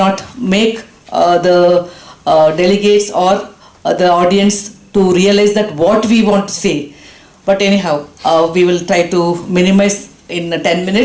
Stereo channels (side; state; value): both; identical; correlation 1.00